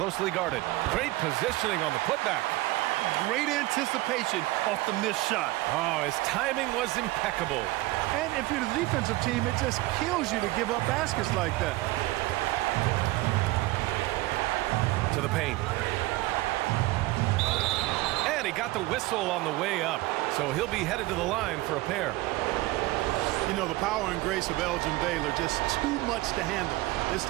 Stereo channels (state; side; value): quieter; left; 19.5 dB